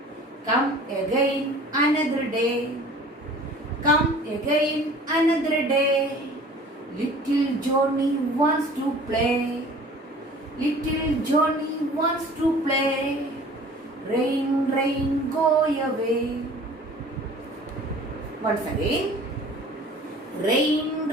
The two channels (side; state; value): both; normal; correlation 0.46